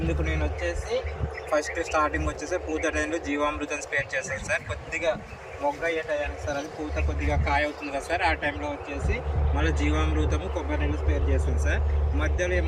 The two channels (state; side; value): identical; both; correlation 1.00